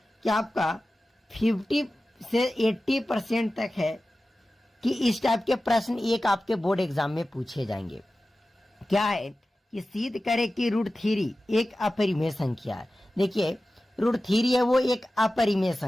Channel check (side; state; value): both; normal; correlation 0.95